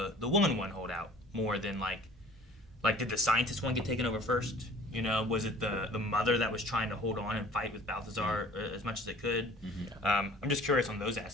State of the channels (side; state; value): both; normal; correlation 0.48